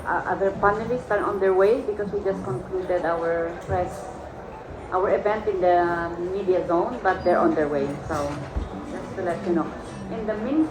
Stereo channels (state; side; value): identical; both; correlation 1.00